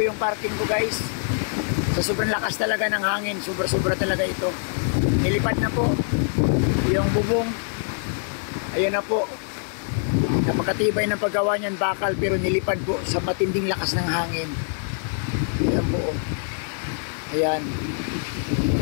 parking ko guys. Sa sobrang lakas talaga ng hangin, sobra-sobra talaga ito. Nilipad na po yung bubong. Ayan na po. Napakatibay ng paggawa niyan, bakal, pero nilipad po sa matinding lakas ng hangin. Ayan po. Ayan.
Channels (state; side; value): silent; right; digital silence